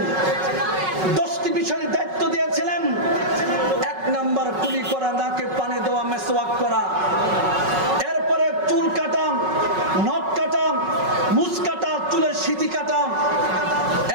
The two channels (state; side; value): late; left; 5.4 ms